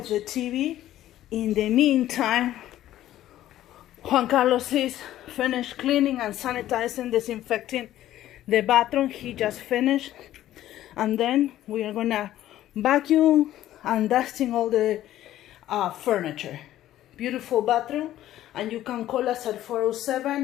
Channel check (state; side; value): quieter; right; 13.3 dB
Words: the TV. In the meantime, Juan Carlos is finished cleaning and sanitizing, disinfecting the bathroom. He just finished. And then we are gonna vacuum and dusting all the furniture. Beautiful bathroom. And you can call us at